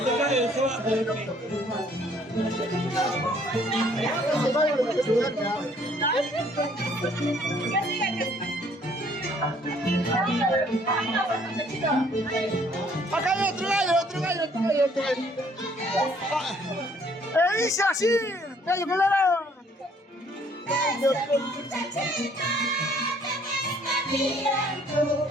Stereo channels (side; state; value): both; normal; correlation 0.62